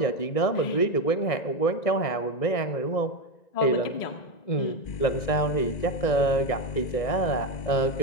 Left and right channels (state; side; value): late; right; 1.9 ms